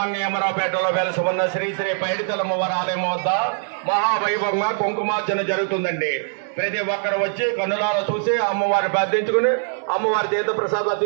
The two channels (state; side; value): silent; left; digital silence